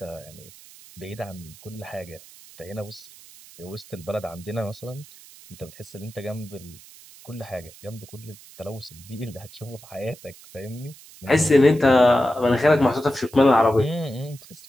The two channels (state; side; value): noise; right; hiss, 21 dB below the sound